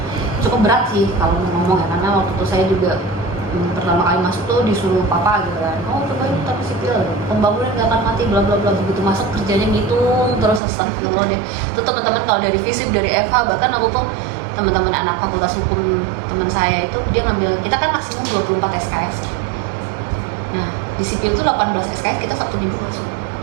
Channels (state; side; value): drops out; left; at 10.6 s